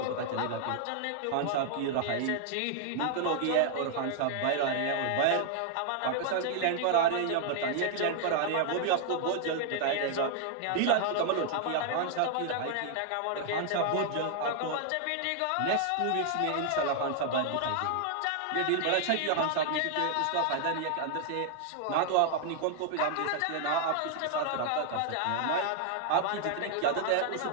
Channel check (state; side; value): different; both; correlation 0.00